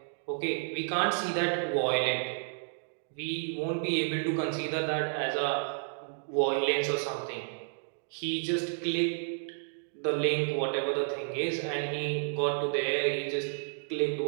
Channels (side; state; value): left; silent; digital silence